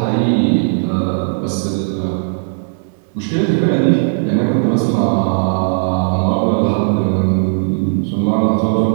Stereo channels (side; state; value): left; silent; 67 dB below the other